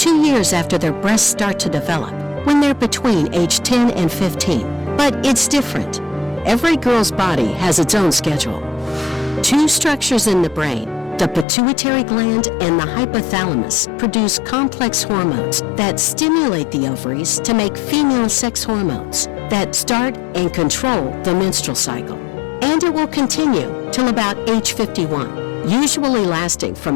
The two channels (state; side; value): drops out; right; at 11.5 s